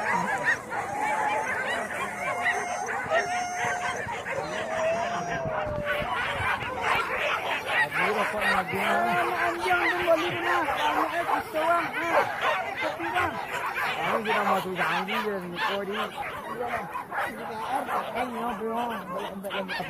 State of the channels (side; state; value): both; identical; correlation 1.00